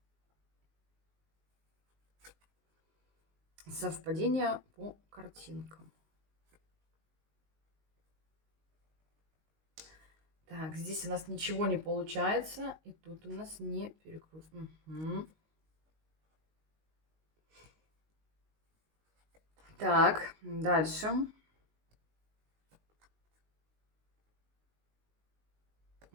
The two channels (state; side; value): late; left; 19 ms